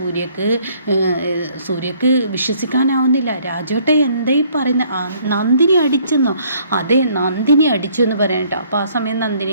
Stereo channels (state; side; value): inverted; both; correlation -0.62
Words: സൂര്യക്ക് വിശ്വസിക്കാനാവുന്നില്ല. രാജേട്ട എന്തായി പറയുന്നത്? നന്ദിനി അടിച്ചെന്നോ? അതെ, നന്ദിനി അടിച്ചു എന്ന് പറയാൻ കേട്ടോ. അപ്പോൾ ആ സമയം